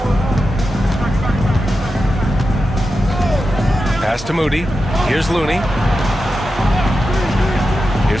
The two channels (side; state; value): both; normal; correlation 0.90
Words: Pass to Moody. Here's Looney.